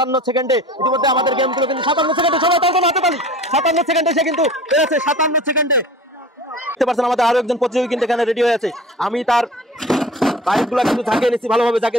সেকেন্ডে ইতিমধ্যে আমাদের গেমগুলো কিন্তু 57 সেকেন্ডে। সবাই তার জন্য হাতে তালি। 57 সেকেন্ডে সে কিন্তু পেরেছে। 57 সেকেন্ডে দেখতে পাচ্ছেন আমাদের আরো একজন প্রতিযোগী কিন্তু এখানে রেডি হয়ে আছে। আমি তার বাইকগুলো কিন্তু ঝাঁকিয়ে নিচ্ছি, ভালোভাবে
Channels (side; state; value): both; normal; correlation 0.41